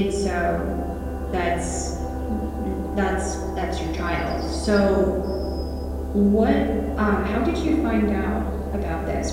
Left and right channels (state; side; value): identical; both; correlation 1.00